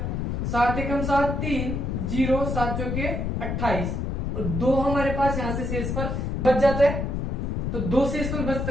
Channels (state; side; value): noise; left; rumble, 1 dB below the sound